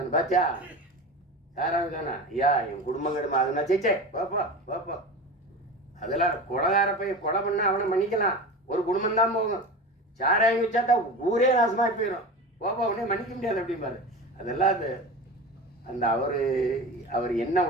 பாத்தியா, சாராயம் தானே ஐயா என் குடும்பம் கிடமா அதுனா சேச்சே பாப்பா பாப்பா. அதெல்லாம் கொலைகார போய் கொலை பண்ணால் அவனை மன்னிக்கலாம், ஒரு குடும்பம் தான் போகும். சாராயம் வச்சாட்டா ஊரே நாசமாக போயிடும், பாப்பா அவனே மன்னிக்க முடியாது அப்படிம்பாரு. அதெல்லாம் அது அந்த அவர் என்ன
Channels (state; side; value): normal; both; correlation 0.29